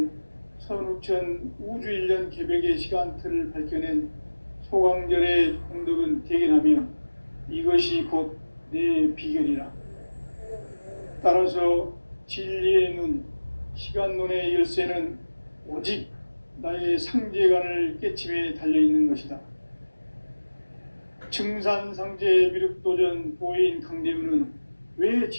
선우천 우주일년 개벽의 시간틀을 밝혀낸 소강절의 공덕은 대견하며 이것이 곧 내 비결이라. 따라서 진리의 눈, 시간론의 열쇠는 오직 나의 상제관을 깨침에 달려있는 것이다. 증산상제 미륵도전 도인 강대문은 왜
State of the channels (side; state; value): both; inverted; correlation -1.00